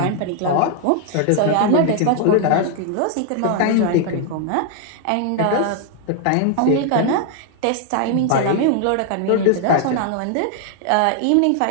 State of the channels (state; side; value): different; both; correlation 0.00